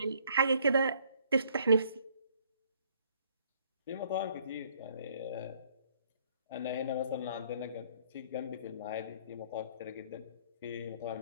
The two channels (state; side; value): inverted; both; correlation -0.63